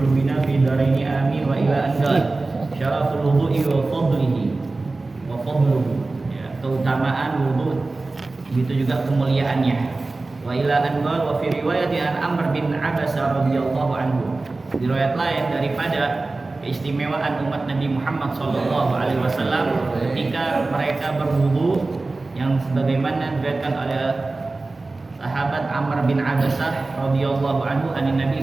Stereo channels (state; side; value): quieter; left; 3.4 dB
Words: fi daraini amin wa ila an qala syaraful wudu'i wa fadlihi wa fadluhu, ya, keutamaan wudu begitu juga kemuliaannya. Wa ila an qala wa fi riwayati an Amr bin Abasa radhiyallahu anhu, di riwayat lain daripada keistimewaan umat Nabi Muhammad sallallahu alaihi wasallam ketika mereka berwudu yang sebagaimana diriwayatkan oleh sahabat Amr bin Abasah radhiyallahu anhu an Nabi